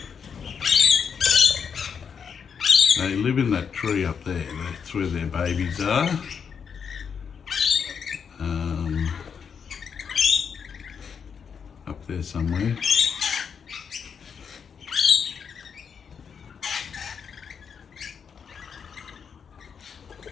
They live in that tree up there. That's where their babies are. Up there somewhere.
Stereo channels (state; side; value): quieter; right; 6.7 dB